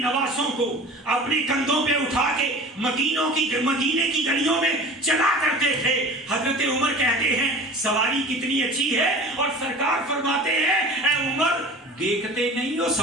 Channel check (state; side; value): normal; both; correlation 0.39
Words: کو اپنے کندھوں پہ اٹھا کے مدینے کی گلیوں میں چلا کرتے تھے۔ حضرت عمر کہتے ہیں سواری کتنی اچھی ہے، اور سرکار فرماتے ہیں اے عمر دیکھتے نہیں ہو